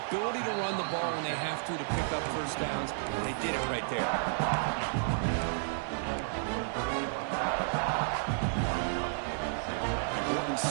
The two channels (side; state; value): left; silent; digital silence